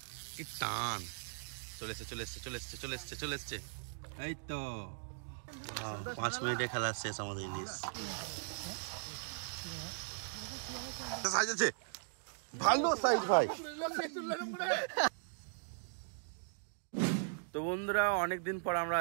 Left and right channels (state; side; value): silent; left; digital silence